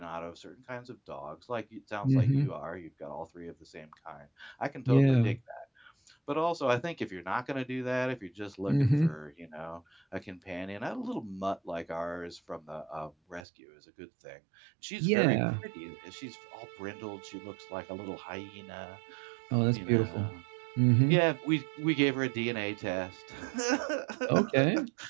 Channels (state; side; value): drops out; left; at 13.4 s